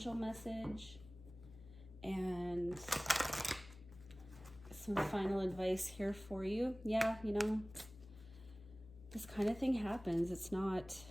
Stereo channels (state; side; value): noise; left; hum, 17 dB below the sound